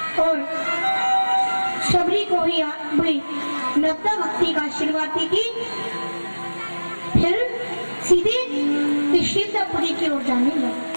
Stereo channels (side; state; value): both; inverted; correlation -1.00